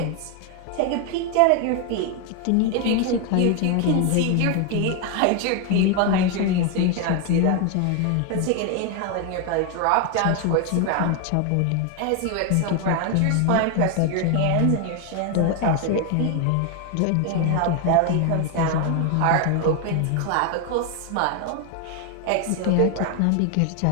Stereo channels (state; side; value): different; both; correlation 0.01